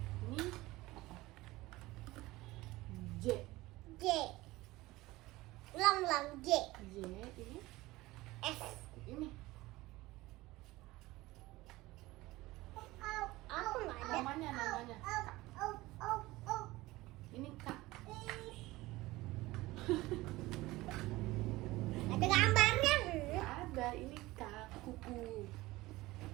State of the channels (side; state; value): left; quieter; 19.2 dB